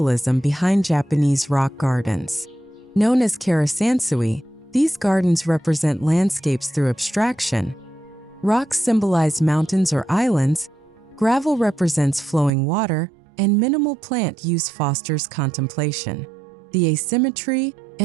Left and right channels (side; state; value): left; drops out; at 12.5 s